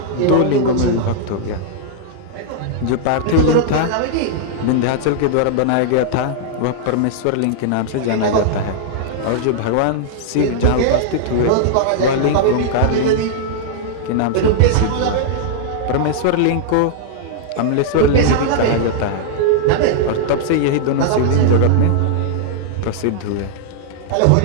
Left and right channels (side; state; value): both; different; correlation -0.01